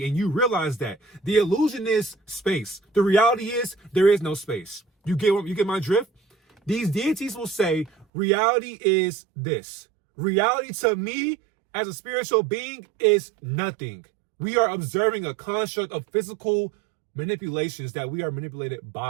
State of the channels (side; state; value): left; drops out; at 8.1 s